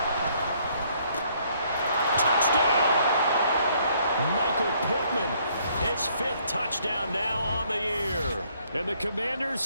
Touchdown! Michael Pittman, his 5th touchdown now on the year. And the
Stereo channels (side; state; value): both; inverted; correlation -0.66